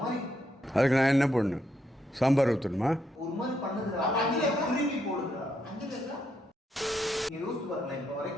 மாதிரி. அதுக்கு நான் என்ன பண்ணணும்? சாம்பார் ஊற்றணுமா? ஒரு மாதிரி பண்ணுதுடா. திருப்பி போடு.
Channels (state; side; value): normal; both; correlation 0.78